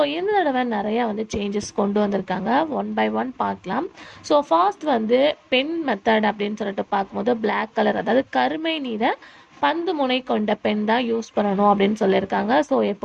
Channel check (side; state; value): both; identical; correlation 1.00